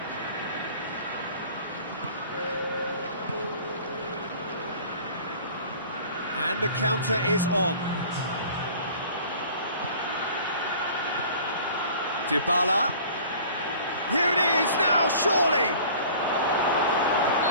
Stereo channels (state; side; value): inverted; both; correlation -0.46